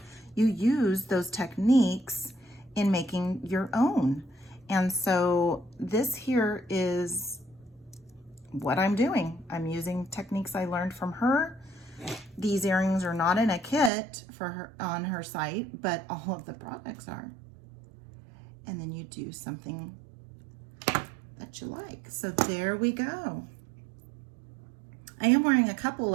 You use those techniques in making your own. And so this here is what I'm doing. I'm using techniques I learned from her. These earrings are not in a kit for her on her site, but all of the products are. And then you do something that you like. So there we go. I'm wearing a couple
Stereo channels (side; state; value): left; drops out; at 13.9 s